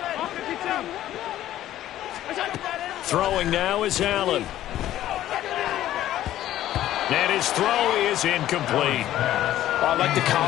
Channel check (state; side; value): quieter; right; 13.2 dB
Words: Throwing now is Allen. And his throw is incomplete. I like the